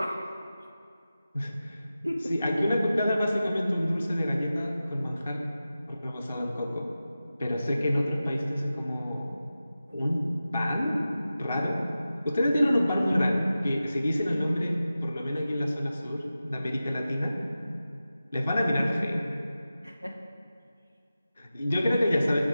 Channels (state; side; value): inverted; both; correlation -0.94